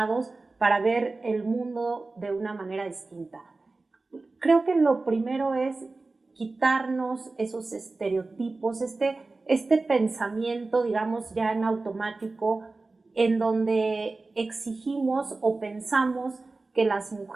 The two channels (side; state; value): left; quieter; 3.5 dB